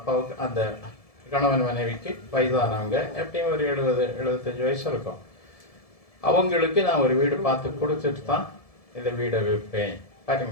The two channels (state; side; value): late; right; 1.7 ms